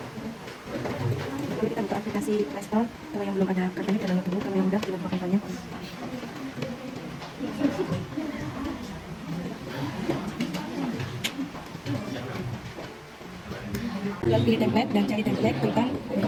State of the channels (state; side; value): identical; both; correlation 1.00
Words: Lalu kita buka aplikasi Play Store. Kalau yang belum ada kartunya, kita download dulu. Kalau yang udah, kita buka kartunya. Lalu pilih template dan cari template, tekan